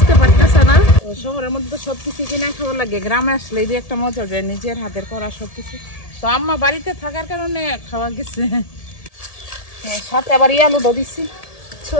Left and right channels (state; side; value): late; right; 1.7 ms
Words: পারতেছে না। শহরের মধ্যে তো সবকিছু কিনা খাওয়া লাগে, গ্রামে আসলে এই যে একটা মজা যায় নিজের হাতের করা সবকিছু। তো আম্মা বাড়িতে থাকার কারণে খাওয়া গেছে। সাথে আবার আলু দিচ্ছি,